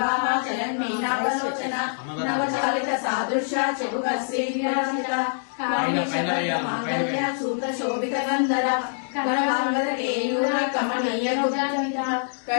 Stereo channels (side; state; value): right; silent; digital silence